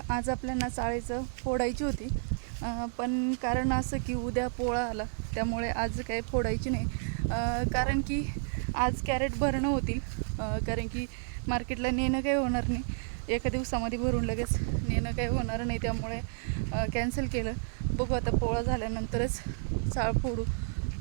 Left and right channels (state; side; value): silent; left; digital silence